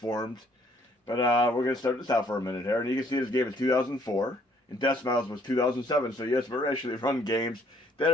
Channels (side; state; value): both; normal; correlation 0.64